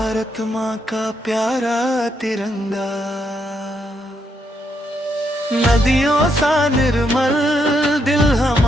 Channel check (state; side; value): normal; both; correlation 0.78